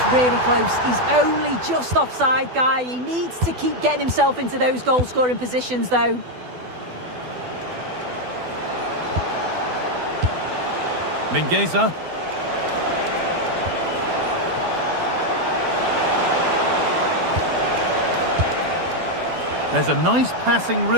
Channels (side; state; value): left; late; 12 ms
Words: really close. He's only just offside, guy. He needs to keep getting himself into those goal-scoring positions, though. Mingueza. There's a nice passing